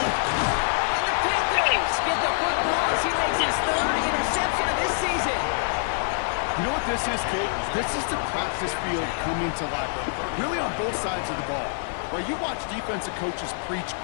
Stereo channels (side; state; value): right; silent; 56 dB below the other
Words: And the Panthers get the football as he makes his 3rd interception of this season. You know what this is, Kate? This is the practice field coming to life. Really on both sides of the ball. Right, you watch defensive coaches preach